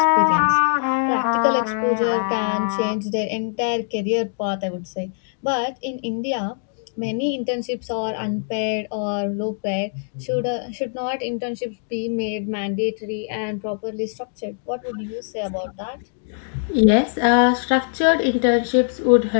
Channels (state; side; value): silent; right; digital silence